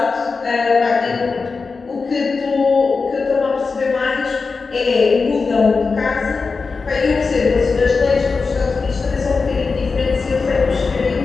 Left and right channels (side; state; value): right; quieter; 4.5 dB